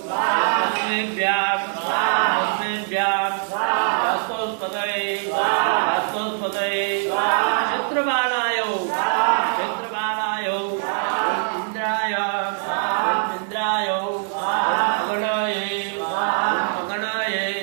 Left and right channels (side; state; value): left; silent; 59 dB below the other